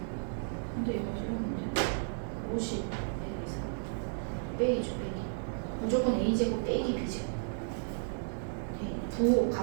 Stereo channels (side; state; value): left; silent; 55 dB below the other